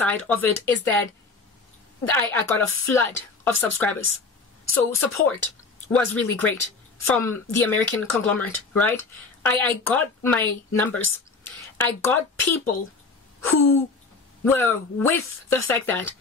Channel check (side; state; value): right; quieter; 4.2 dB